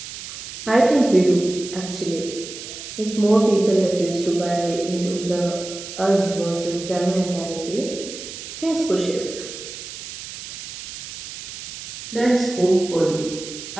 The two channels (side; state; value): right; noise; hiss, 11 dB below the sound